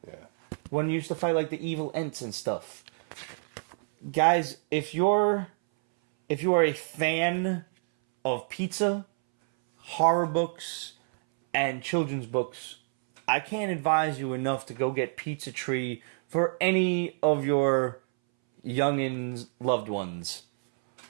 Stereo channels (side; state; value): left; silent; 59 dB below the other